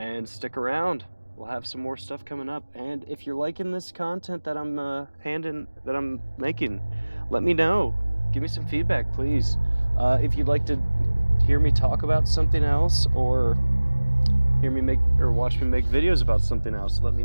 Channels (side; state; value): both; inverted; correlation -1.00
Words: stick around. We'll have some more stuff coming up. And if you're liking this content that I'm making, let me know. Give me some feedback, please. If you'd like to hear me talk about something else, or hear me watch me make videos about something else, let me